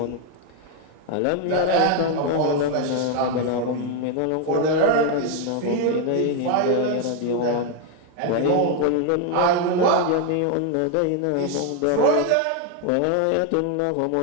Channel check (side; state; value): both; different; correlation 0.01